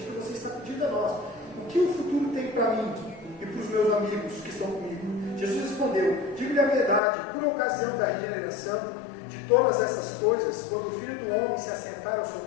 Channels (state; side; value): drops out; right; at 7.0 s